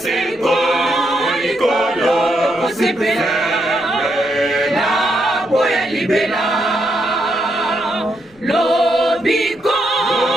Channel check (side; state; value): left; noise; rumble, 30 dB below the sound